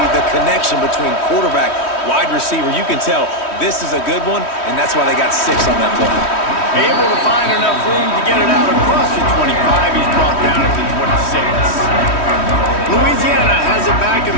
the connection between quarterback, wide receiver. You can tell this is a good one, and that's why they got 6 on that play. Able to find enough room to get it out across the 25. He's brought down at the 26. Louisiana has it back, and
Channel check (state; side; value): late; right; 3.1 ms